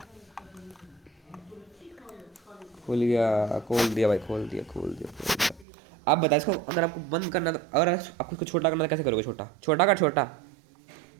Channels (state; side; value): drops out; left; at 5.7 s